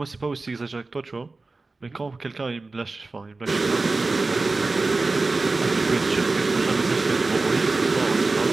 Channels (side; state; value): left; quieter; 3.6 dB